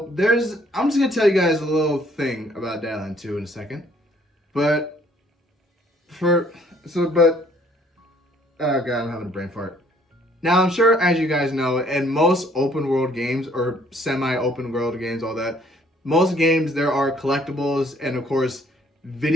I'm just gonna tell you guys a little thing about Dead Island 2 in a second. But oh god, I'm having a brain fart. Now, I'm sure, as you guys know, in most open world games or semi-open world games, all that, most games there are collectibles and, of course,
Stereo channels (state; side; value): normal; both; correlation 0.62